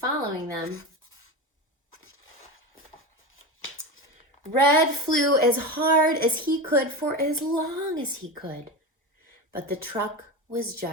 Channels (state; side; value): normal; both; correlation 0.22